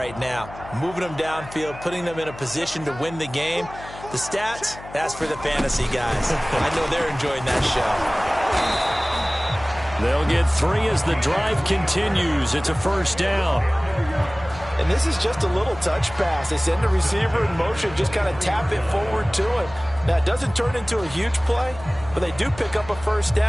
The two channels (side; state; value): left; noise; hum, 16 dB below the sound